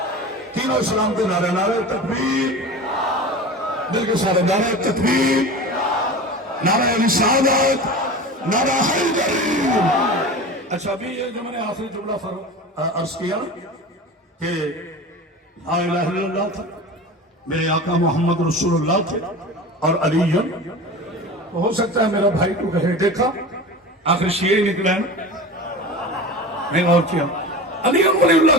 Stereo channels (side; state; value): both; normal; correlation 0.32